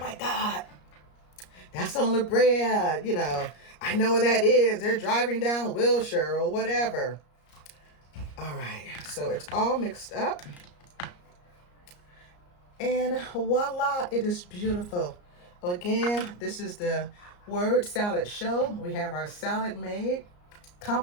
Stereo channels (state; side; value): late; right; 34 ms